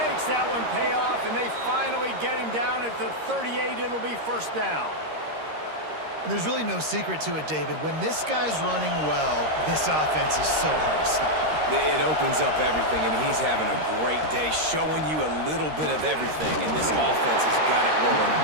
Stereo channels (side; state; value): left; late; 13 ms